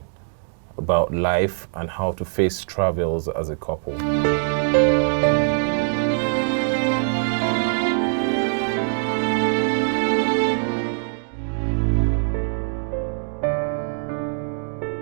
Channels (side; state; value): left; silent; 64 dB below the other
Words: about life and how to face travels as a couple.